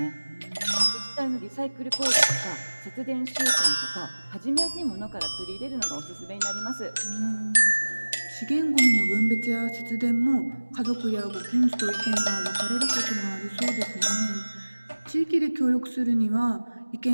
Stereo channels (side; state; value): both; inverted; correlation -1.00